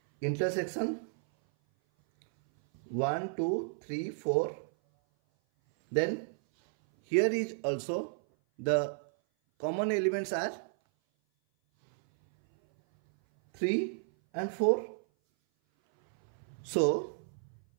intersection 1, 2, 3, 4. Then here is also the common elements are 3 and 4. So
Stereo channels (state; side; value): silent; left; 56 dB below the other